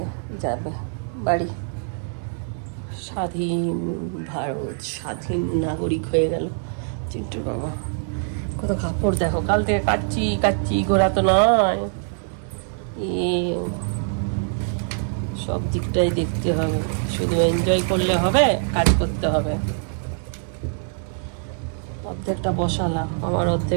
যাবে বাড়ি। স্বাধীন ভারত, স্বাধীন নাগরিক হয়ে গেল চিন্টুর বাবা। কত কাপড় দেখো, কাল থেকে কাচ্ছি ঘোরা তো নয়, সব দিকটাই দেখতে হবে, শুধু এনজয় করলে হবে, কাজ করতে হবে। অর্ধেকটা বসালাম, আমার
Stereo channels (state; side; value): silent; left; digital silence